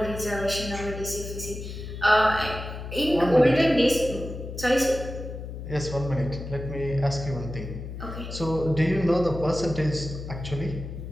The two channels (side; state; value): left; noise; hum, 9 dB below the sound